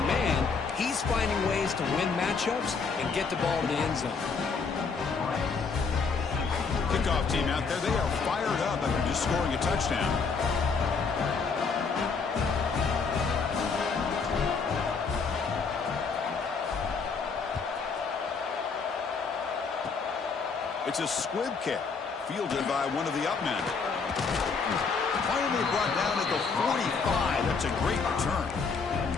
man, he's finding ways to win matchups and get the ball to the end zone. Kickoff team out there, they are fired up after just scoring a touchdown. It's a squib kick, fielded by one of the up men. Finally brought down at the 45. That's a great return.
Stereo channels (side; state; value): right; quieter; 5.0 dB